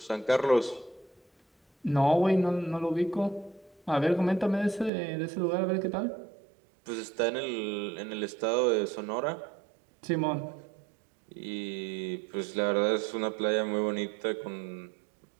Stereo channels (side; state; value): left; drops out; at 4.9 s